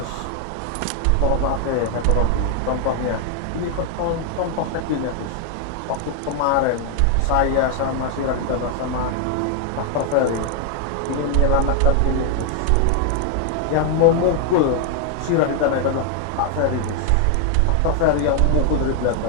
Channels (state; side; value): different; both; correlation 0.00